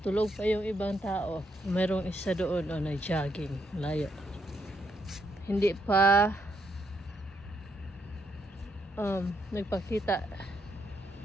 Tulog pa yung ibang tao. Merong isa doon o nag-jogging, layo. Hindi pa nagpakita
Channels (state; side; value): normal; both; correlation 0.76